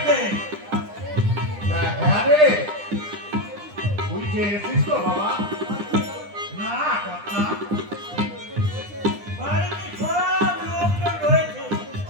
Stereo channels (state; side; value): late; left; 9.9 ms